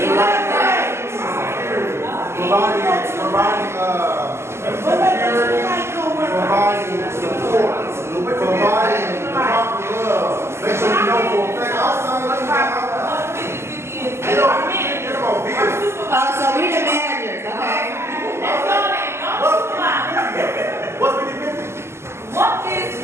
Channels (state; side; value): late; left; 0.13 ms